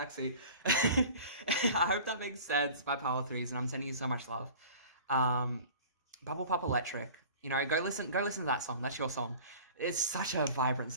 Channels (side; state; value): both; inverted; correlation -0.42